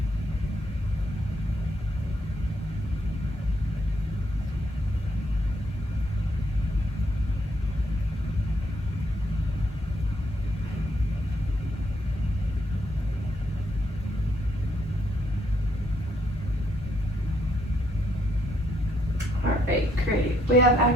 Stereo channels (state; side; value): normal; both; correlation 0.74